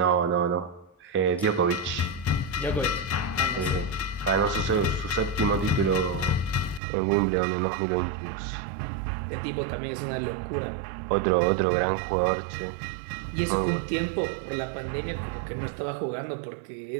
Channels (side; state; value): left; drops out; at 6.8 s